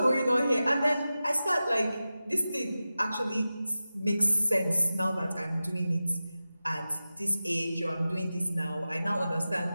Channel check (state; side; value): inverted; both; correlation -0.94